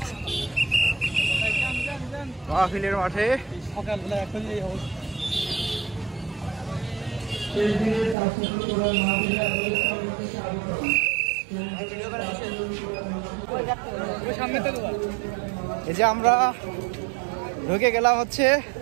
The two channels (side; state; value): left; drops out; at 8.2 s